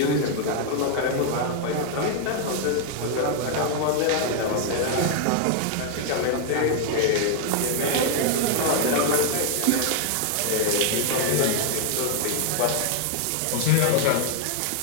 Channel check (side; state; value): both; different; correlation 0.00